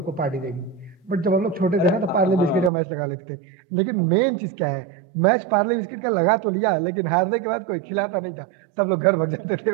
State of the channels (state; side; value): drops out; left; at 2.7 s